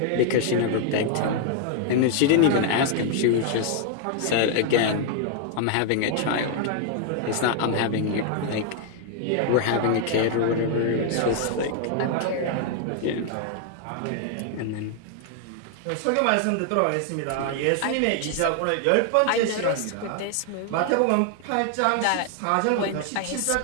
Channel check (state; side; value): different; both; correlation 0.00